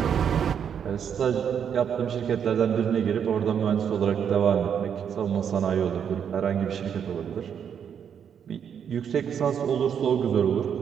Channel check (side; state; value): left; quieter; 8.0 dB